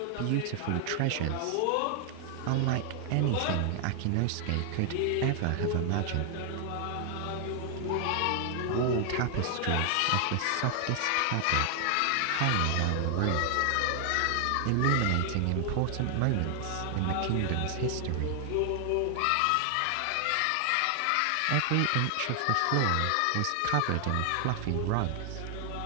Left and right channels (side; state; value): both; different; correlation 0.00